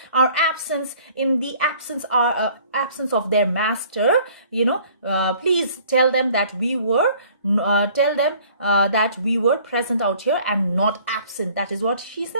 our absence in the absence of their master. Please tell them that we were present out here and not absent. That is what she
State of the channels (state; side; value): inverted; both; correlation -0.54